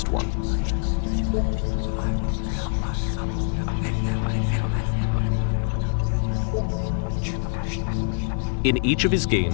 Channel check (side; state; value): right; silent; 62 dB below the other